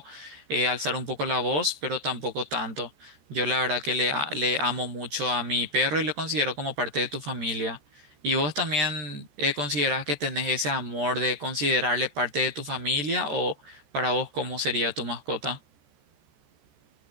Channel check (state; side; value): late; left; 14 ms